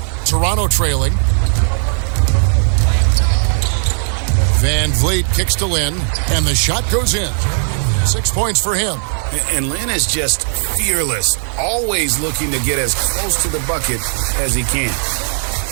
Toronto trailing. VanVleet kicks to Lin, and the shot goes in. 6 points for him. And Lin is just fearless, always looking to get as close to the bucket as he can.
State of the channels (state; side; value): silent; left; digital silence